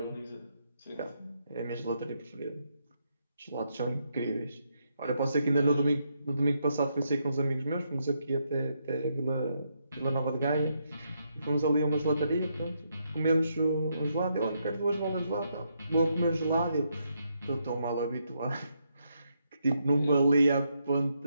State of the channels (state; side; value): inverted; both; correlation -0.78